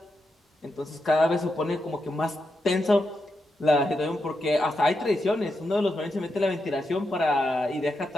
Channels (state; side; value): normal; both; correlation 0.86